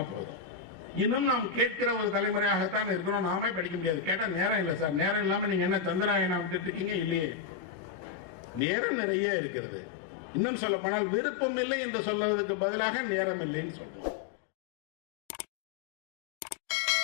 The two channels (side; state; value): right; drops out; at 8.6 s